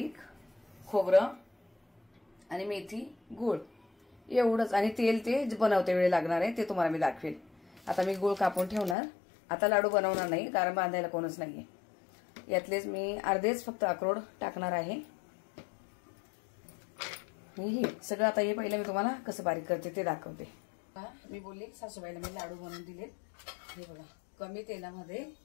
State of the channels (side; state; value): right; drops out; at 9.0 s